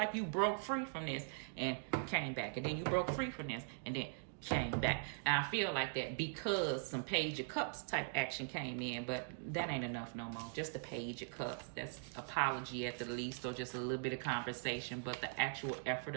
you broke free from this and came back, and then you broke free from this and then came back. And I feel like that because some Page of Cups type action came in, but that ain't enough no more. Just the Page of Cups. That's apology at the least, or just a little bit of conversation, but the actual effort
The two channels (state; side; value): silent; left; digital silence